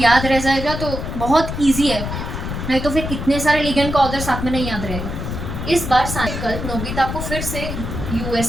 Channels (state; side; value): noise; left; rumble, 5 dB below the sound